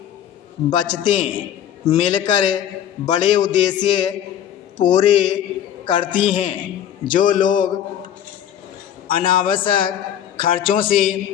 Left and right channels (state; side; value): quieter; right; 10.3 dB